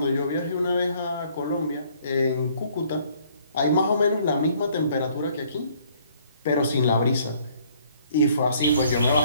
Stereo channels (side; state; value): both; inverted; correlation -0.62